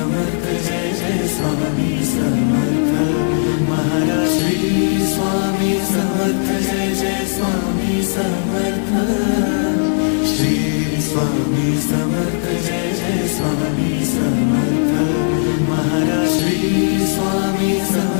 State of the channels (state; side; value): silent; right; digital silence